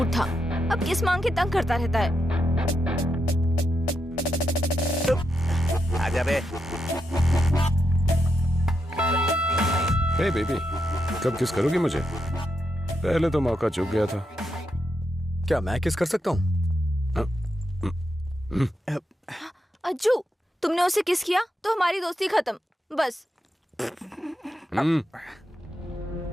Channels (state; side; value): normal; both; correlation 0.84